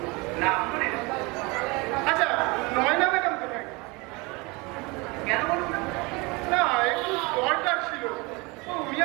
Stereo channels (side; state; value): left; quieter; 26.2 dB